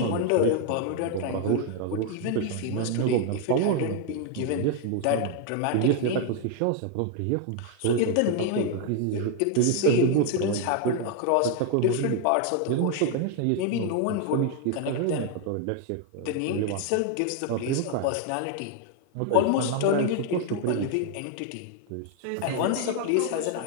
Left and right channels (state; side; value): different; both; correlation 0.00